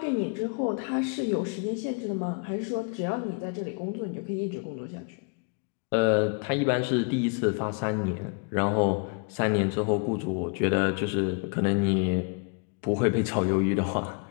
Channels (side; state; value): right; quieter; 37.1 dB